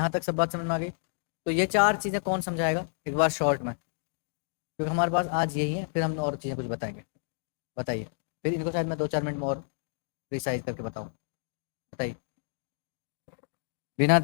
तक सब बात समझ में आ गई। तो ये 4 चीजें कौन समझाएगा एक बार शॉर्ट में, क्योंकि हमारे पास आज यही है, फिर हम और चीजें कुछ बताएंगे। बताइए, फिर इनको शायद मैं 2-4 मिनट में और प्रिसाइज करके बताऊँ। बताइए, बिना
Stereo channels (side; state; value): right; silent; digital silence